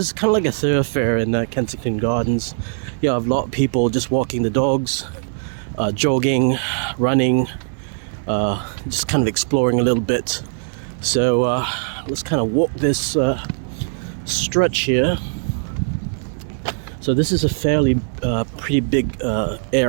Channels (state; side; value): silent; left; digital silence